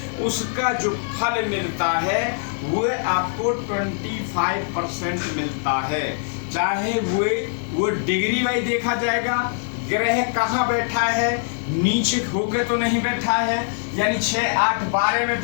उसका जो फल मिलता है वो आपको 25% मिलता है। चाहे वो डिग्री वाइज देखा जाएगा, ग्रह कहाँ बैठा है, नीचे होके तो नहीं बैठा है, यानी 6, 8, 12 में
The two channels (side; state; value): right; silent; 64 dB below the other